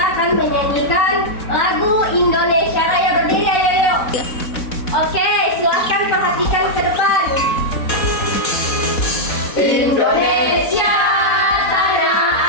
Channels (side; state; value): right; late; 4.1 ms